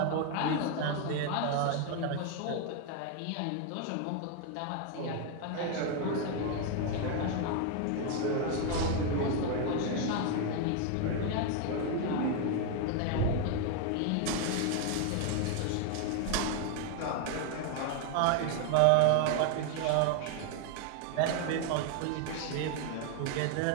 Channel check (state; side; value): different; both; correlation 0.01